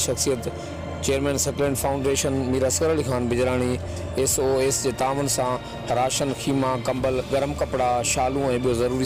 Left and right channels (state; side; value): identical; both; correlation 1.00